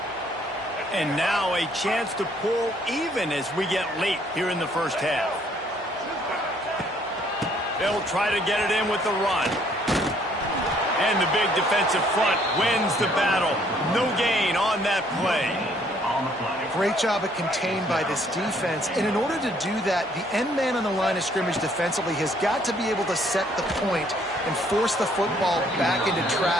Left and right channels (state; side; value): normal; both; correlation 0.64